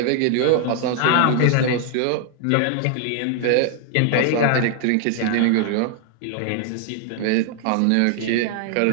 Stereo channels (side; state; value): both; different; correlation 0.00